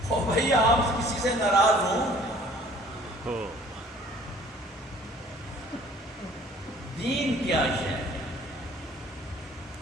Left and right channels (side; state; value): both; normal; correlation 0.53